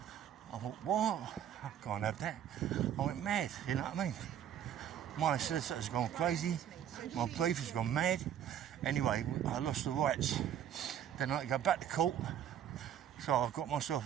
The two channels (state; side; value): quieter; left; 10.0 dB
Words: I thought, what? I can't have that. I went mad, you know what I mean? My solicitor's gone crazy. My brief has gone mad. Anyway, I lost the rights. Then I had to go back to court. So I've got